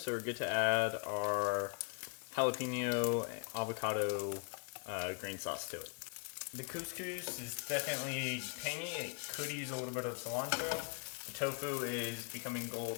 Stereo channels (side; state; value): right; quieter; 37.9 dB